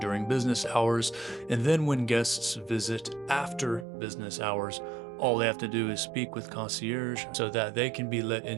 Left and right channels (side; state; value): left; drops out; at 3.9 s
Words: business hours, and then when guests visit after business hours, all they have to do is speak with concierge so that they can be let